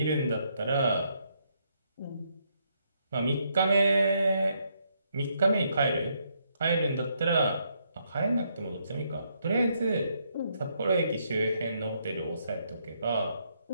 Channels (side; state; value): both; inverted; correlation -0.74